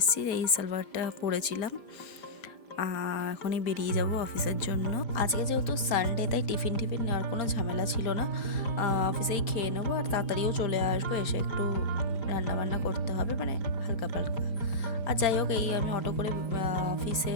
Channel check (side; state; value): right; late; 5.0 ms